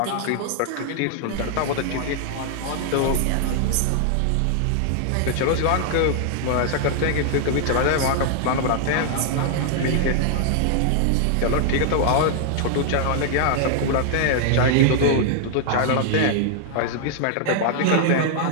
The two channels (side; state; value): both; different; correlation -0.01